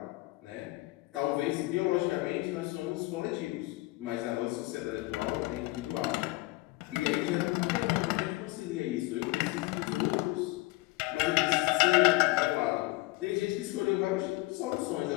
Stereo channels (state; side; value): quieter; right; 21.5 dB